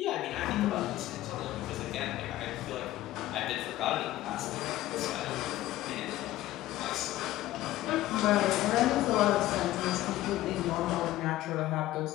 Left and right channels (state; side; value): quieter; right; 15.4 dB